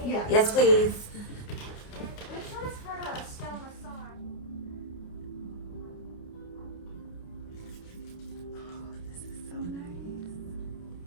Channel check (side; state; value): right; late; 29 ms